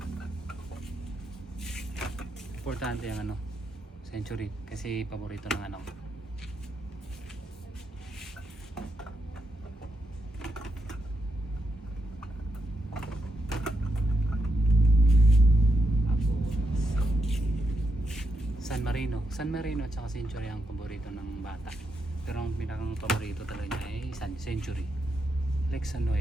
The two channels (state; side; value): normal; both; correlation 0.83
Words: Importante yung ano, Century, kasi paborito ng anak ko. San Marino at saka Century ang paborito ng bata. Pero ang pinakang paborito talaga niya ay Century. Lexan